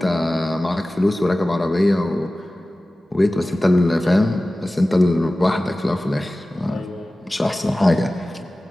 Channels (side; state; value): both; normal; correlation 0.97